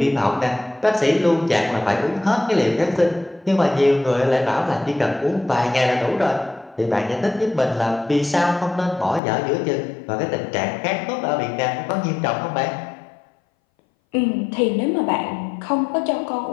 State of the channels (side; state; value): right; drops out; at 9.2 s